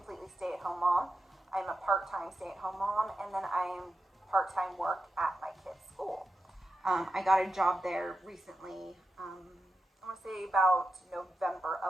stay-at-home mom. I'm a part-time stay-at-home mom, and then I am part-time work at my kids' school. I got a job there recently, I want to say about November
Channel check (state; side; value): normal; both; correlation 0.90